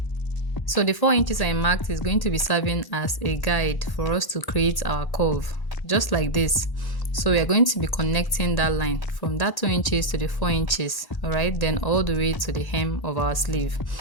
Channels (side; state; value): right; late; 1.1 ms